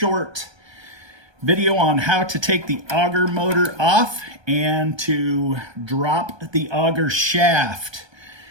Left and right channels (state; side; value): late; left; 1.2 ms